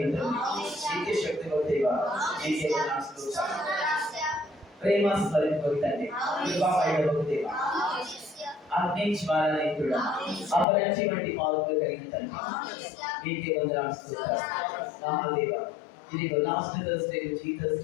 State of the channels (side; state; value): right; drops out; at 10.7 s